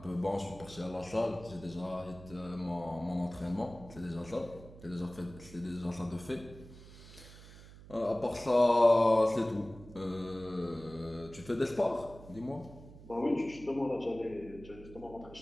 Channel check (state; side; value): noise; right; hum, 18 dB below the sound